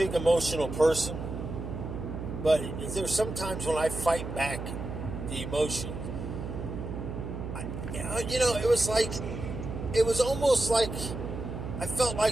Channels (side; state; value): right; noise; hum, 7 dB below the sound